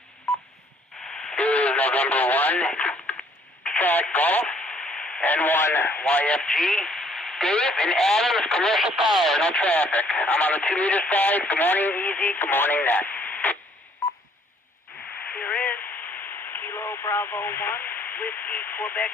November 1, Fat Golf, N1 YFG, Dave and Adams, Commercial Power, no traffic. I'm on the 2 meter side. Good morning, Easy. Good morning, Net. Here is Kilo Bravo 1, Whiskey Quebec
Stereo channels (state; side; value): normal; both; correlation 0.62